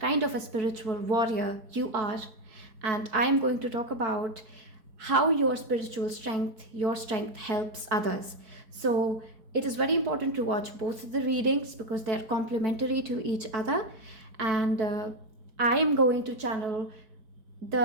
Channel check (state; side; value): late; left; 4.6 ms